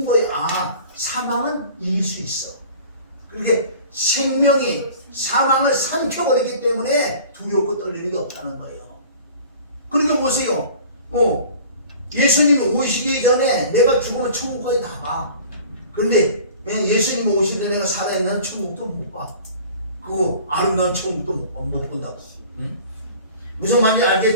거예요. 아, 사망은 이길 수 있어. 그렇게 생명이 사망을 삼켜버리기 때문에 두렵고 떨리는 게 없다는 거예요. 그러니까 보세요. 예수님이 오시기 전에 내가 죽으면 천국까지 다 가. 그런데 예수님이 오실 때 내가 살아있는 천국도 못 봐. 그 아름다운 천국도 못 본다고. 응? 무슨 말인지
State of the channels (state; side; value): inverted; both; correlation -0.45